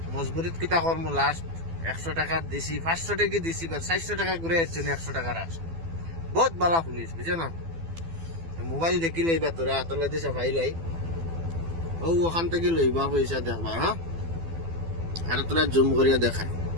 মজবুরিত কিতা করবো, লাস্ট 100 টাকা দিছি, 500 টাকা দিছি, 400 টাকা ঘুরে যাচ্ছেন 100 টাকা রাস। বহুত বালা পুলিশ বুঝছো না। মোবাইল দেখি লইবা, তোরা হাতলে দিছে ফাইলাই ও ওখান থেকে লইবা পয়সা দেখবা। হ্যাঁ, আর তোরা জুম করিয়া দেখায়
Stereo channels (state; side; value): late; left; 12 ms